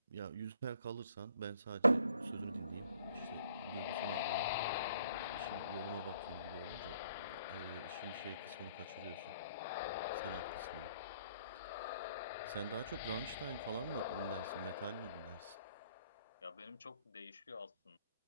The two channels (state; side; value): inverted; both; correlation -0.63